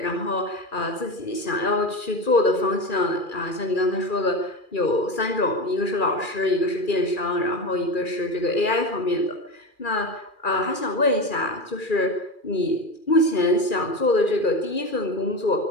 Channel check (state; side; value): late; right; 2.4 ms